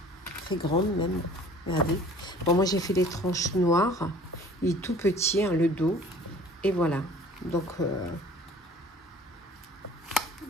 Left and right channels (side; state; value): both; normal; correlation 0.49